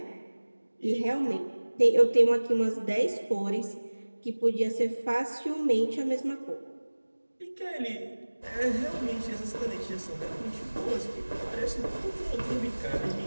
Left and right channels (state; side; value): inverted; both; correlation -1.00